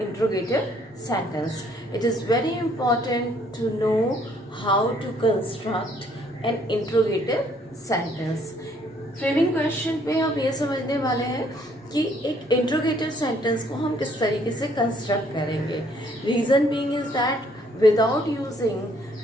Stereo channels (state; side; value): normal; both; correlation 0.64